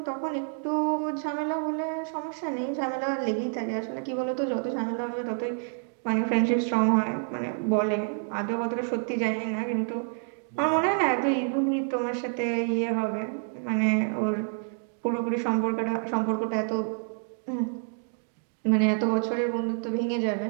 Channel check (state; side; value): silent; left; 59 dB below the other